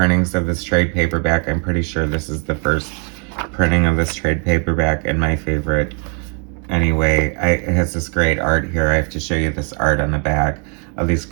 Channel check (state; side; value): quieter; left; 37.8 dB